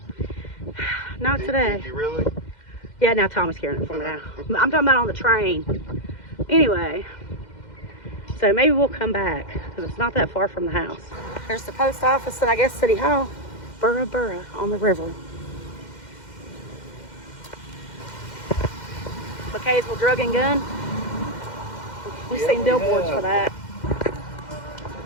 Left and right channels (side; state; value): right; late; 2.1 ms